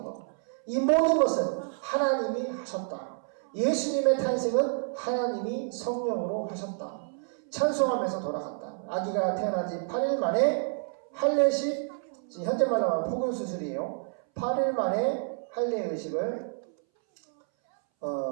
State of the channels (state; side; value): silent; left; 59 dB below the other